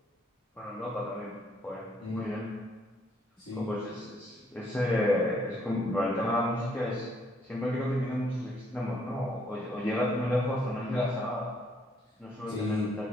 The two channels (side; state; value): both; normal; correlation 0.69